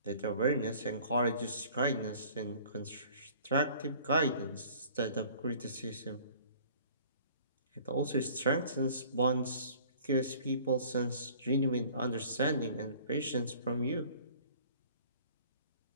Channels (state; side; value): inverted; both; correlation -0.51